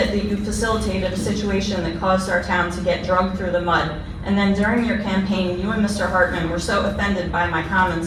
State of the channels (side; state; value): both; identical; correlation 1.00